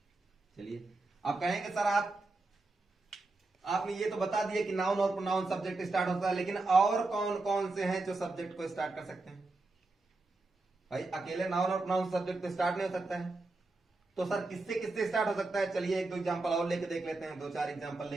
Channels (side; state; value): left; quieter; 3.3 dB